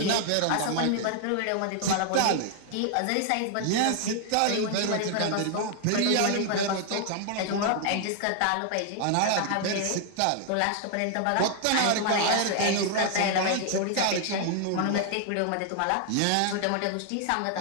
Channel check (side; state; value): both; different; correlation 0.00